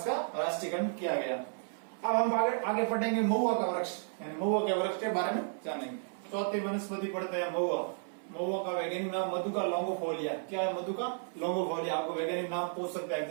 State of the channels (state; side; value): silent; left; 56 dB below the other